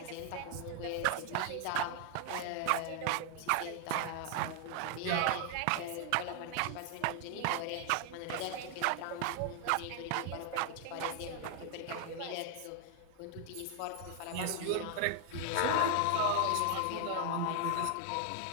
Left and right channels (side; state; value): both; different; correlation 0.00